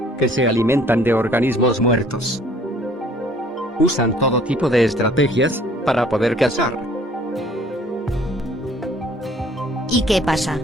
que se alimentan de organismos muertos. Usan todo tipo de estrategias para poder cazar. ¿Y qué pasa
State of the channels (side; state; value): both; normal; correlation 0.56